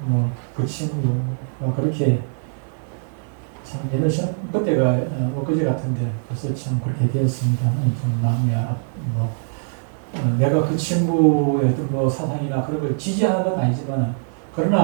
그 친구가 그렇게 참 옛날 시험 그때가 엊그제 같은데 벌써 참 그렇게 되었습니다. 좀 마음이 내가 그 친구의 어떤 사상이나 그런 걸 지지하는 건 아니지만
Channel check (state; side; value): silent; left; digital silence